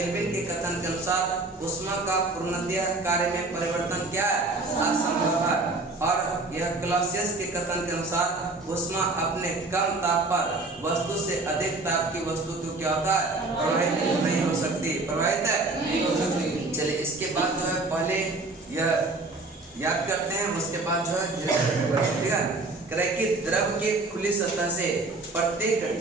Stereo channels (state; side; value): quieter; left; 3.2 dB